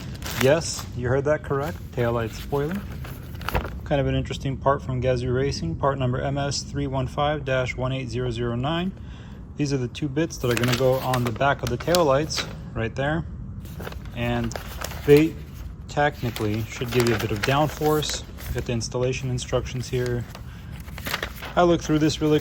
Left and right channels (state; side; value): identical; both; correlation 1.00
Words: Yes, you heard that correct, taillight spoiler. Kind of an interesting part from Gazoo Racing, part number MS315-18009. These are the two bits that are going to go on the back of the taillights right there. And they technically should give you a bit of downforce. Got the installation instructions here. I looked through this really